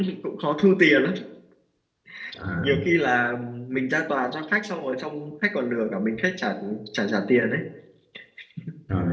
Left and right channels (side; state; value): both; identical; correlation 1.00